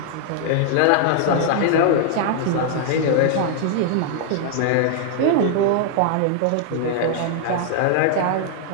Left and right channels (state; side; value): different; both; correlation 0.00